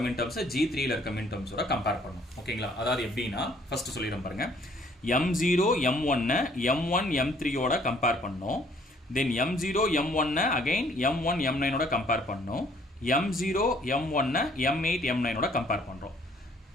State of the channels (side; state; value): both; normal; correlation 0.61